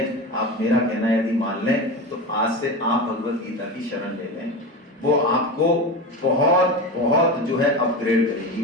आप मेरा कहना यदि मान लें तो आज से आप भगवत गीता की शरण ले लें। वो आपको बहुत बहुत जो है अपग्रेड करेगी।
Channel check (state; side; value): normal; both; correlation 0.24